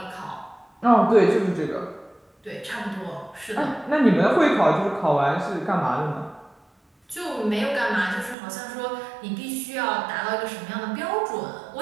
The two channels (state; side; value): drops out; left; at 8.3 s